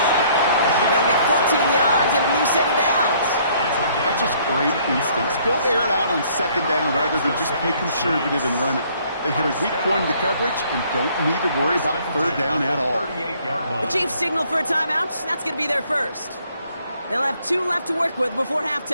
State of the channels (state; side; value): inverted; both; correlation -0.62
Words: They'll get 14 yards and a new set of downs. That's just great instincts. Go air it out on 2nd down rather than just play conservative and run it. They hit a weak point in the coverage and don't need to worry about 3rd down at all. The Chiefs signal for a timeout. That's going to be their first. They'll have 2 left to work with before